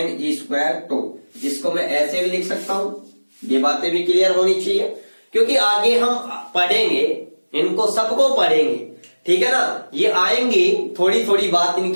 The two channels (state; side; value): inverted; both; correlation -1.00